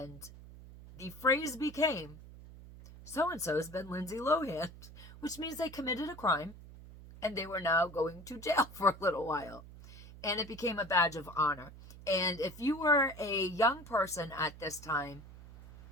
the phrase became, so-and-so has been Lindsey Lohan, which means they committed a crime, and they were now going to jail for a little while. And it became a badge of honor. And if you were a young person at this time,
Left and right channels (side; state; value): right; noise; hum, 17 dB below the sound